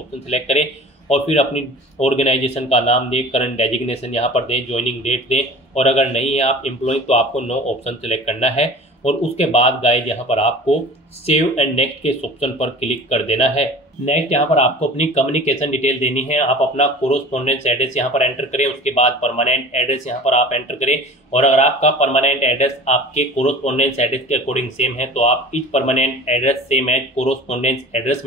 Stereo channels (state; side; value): normal; both; correlation 0.40